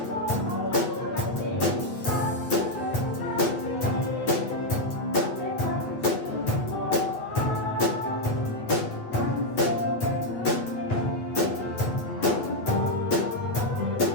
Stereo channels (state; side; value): late; right; 8.8 ms